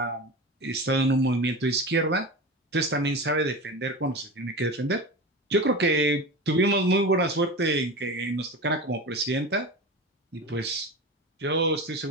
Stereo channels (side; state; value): both; normal; correlation 0.28